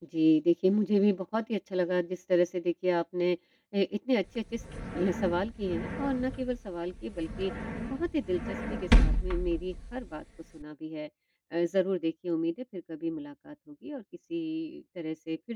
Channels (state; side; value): identical; both; correlation 1.00